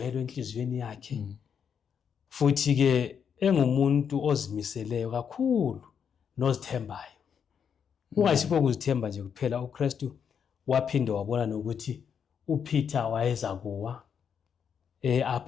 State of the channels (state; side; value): quieter; right; 7.4 dB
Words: enhliziyweni yakhe, futhi ke engumuntu ozimiseleyo kakhulu nozithembayo. Kungayisikho ukuzithemba nje kuphela, uKristu waphinde wabona nokuthi uPeter wayeza kuwa,